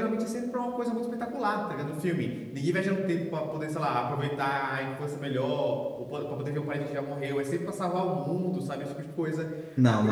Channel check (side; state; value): both; identical; correlation 1.00